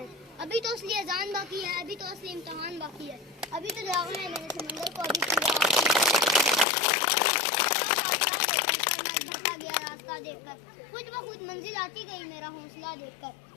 अभी तो असली अजान बाकी है, अभी तो असली इम्तिहान बाकी है, अभी तो जागना है मैंने समंदर को, अभी भटका गया रास्ता देखकर, खुद ब खुद मंजिल आती गई मेरा हौसला देखकर।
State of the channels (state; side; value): drops out; right; at 6.7 s